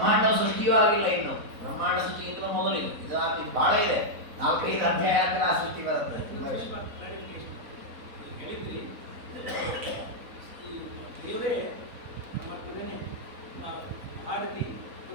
ಸೃಷ್ಟಿಯೂ ಆಗಿಲ್ಲ ಇನ್ನು. ಬ್ರಹ್ಮಾಂಡ ಸೃಷ್ಟಿಗಿಂತ ಮೊದಲು ಇದು ಬಹಳ ಇದೆ. 4-5 ಅಧ್ಯಾಯ ಆದ್ರೆ ಆ ಸೃಷ್ಟಿ ಬರುತ್ತೆ. ದೇವರೇ ಪರಮಾತ್ಮನೇ ಭಾರತಿ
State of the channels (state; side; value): late; left; 4.0 ms